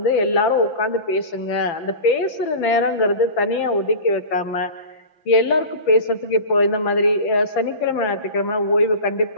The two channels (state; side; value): late; right; 5.9 ms